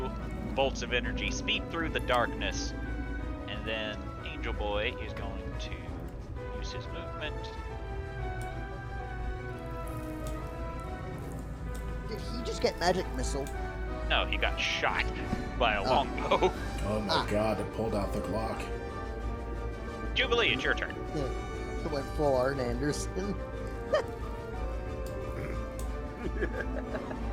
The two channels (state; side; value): identical; both; correlation 1.00